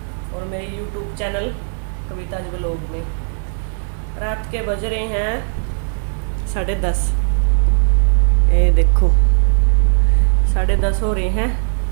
और मेरे यूट्यूब चैनल कविताज व्लॉग में। रात के बज रहे हैं 10:30। ये देखो 10:30 हो रहे हैं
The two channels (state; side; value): silent; left; 60 dB below the other